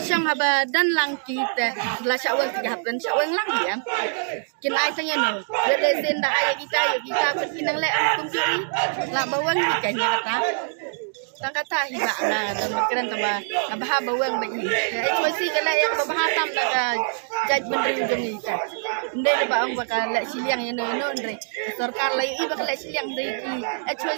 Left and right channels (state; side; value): silent; left; digital silence